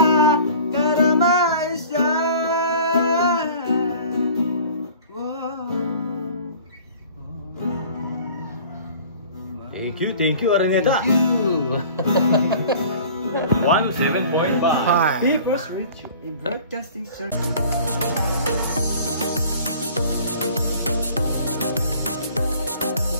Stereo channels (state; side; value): inverted; both; correlation -0.46